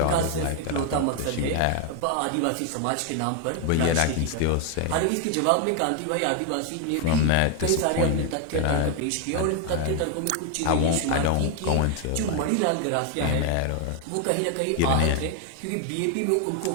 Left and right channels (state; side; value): different; both; correlation 0.00